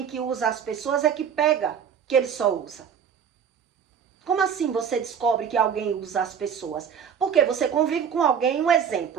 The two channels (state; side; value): quieter; left; 7.6 dB